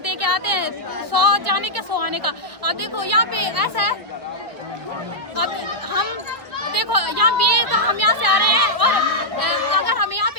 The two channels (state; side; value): late; left; 1.4 ms